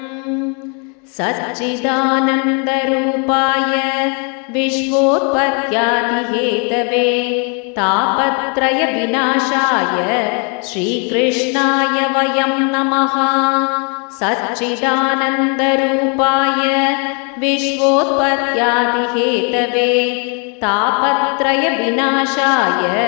ಸಚ್ಚಿದಾನಂದರೂಪಾಯ ವಿಶ್ವೋತ್ಪತ್ಯಾದಿಹೇತವೇ ತಾಪತ್ರಯ ವಿನಾಶಾಯ ಶ್ರೀಕೃಷ್ಣಾಯ ವಯಂ ನಮಃ. ಸಚ್ಚಿದಾನಂದರೂಪಾಯ ವಿಶ್ವೋತ್ಪತ್ಯಾದಿಹೇತವೇ ತಾಪತ್ರಯ ವಿನಾಶಾಯ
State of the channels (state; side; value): quieter; right; 36.6 dB